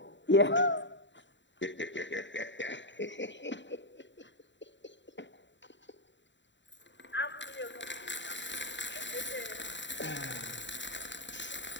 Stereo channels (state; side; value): late; right; 0.53 ms